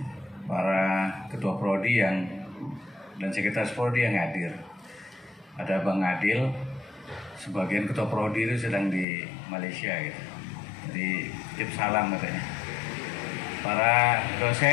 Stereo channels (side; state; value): right; drops out; at 9.1 s